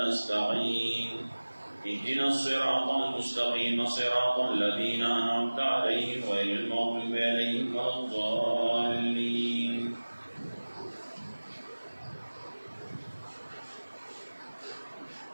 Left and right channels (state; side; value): inverted; both; correlation -1.00